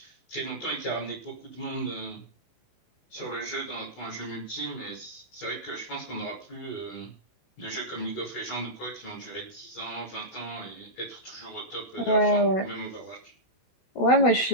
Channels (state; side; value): late; right; 16 ms